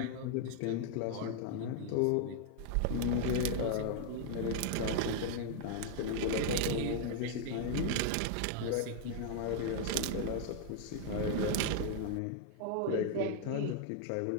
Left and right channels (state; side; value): different; both; correlation 0.00